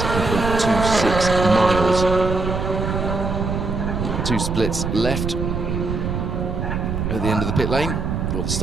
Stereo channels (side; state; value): right; noise; rumble, 2 dB below the sound